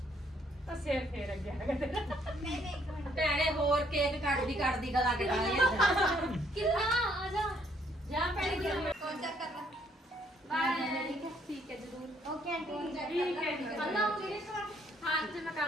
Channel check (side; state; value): both; normal; correlation 0.68